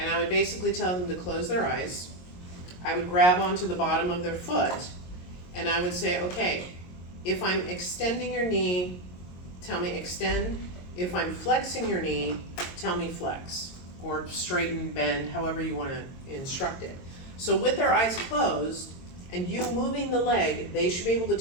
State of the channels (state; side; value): late; right; 22 ms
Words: I would basically tell them to close their eyes. I would grab onto the bottom of their foot, and I would say, okay, if I'm extending your knee, tell me extend. If I'm flexing your knee, tell me flex, or straighten, bend, however you wanna instruct it. So with their eyes closed, and you moving the leg, they should be able to